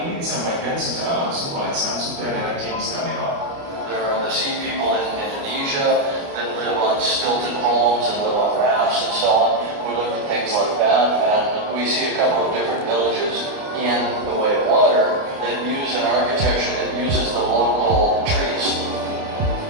ini disampaikan secara langsung oleh sang sutradara James Cameron. There are the sea people in Indonesia that live on stilted homes and live on rafts and so on. We looked at things like that, and we see a couple of different villages in the way of water that use an architecture that uses the local trees.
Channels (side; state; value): left; late; 29 ms